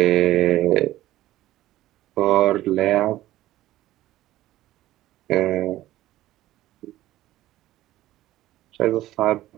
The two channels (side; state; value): left; quieter; 15.2 dB